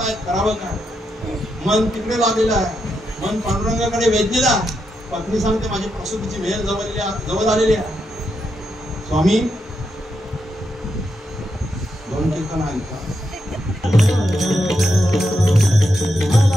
करावं काय मन तिकडे लागलेलं आहे मन पांडुरंगाकडे वेधलेलं आहे पत्नी सांगते माझी प्रसूतीची वेळ जवळ आलेली आहे स्वामी दोन कीर्तन ऐका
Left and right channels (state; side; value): normal; both; correlation 0.83